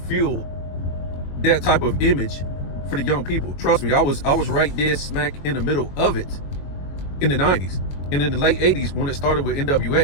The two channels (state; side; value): late; right; 21 ms